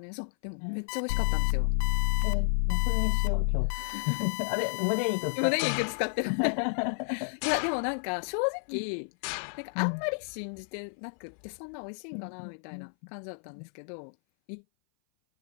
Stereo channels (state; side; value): silent; right; 57 dB below the other